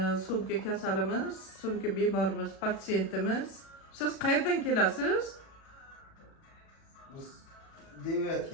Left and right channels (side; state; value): right; late; 37 ms